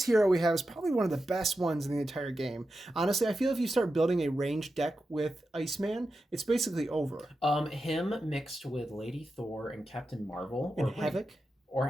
hero we have is probably one of the best ones in the entire game. Honestly, I feel if you start building a ranged deck with Iceman, it's basically over. Him mixed with Lady Thor and Captain Marvel. And Havoc.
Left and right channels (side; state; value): both; normal; correlation 0.90